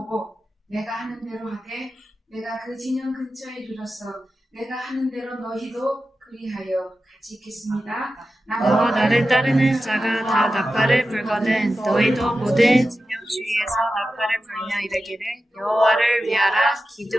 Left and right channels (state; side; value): normal; both; correlation 0.93